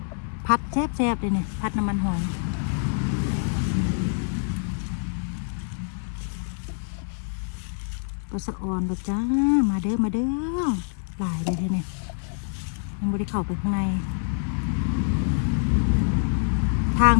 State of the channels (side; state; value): right; silent; 61 dB below the other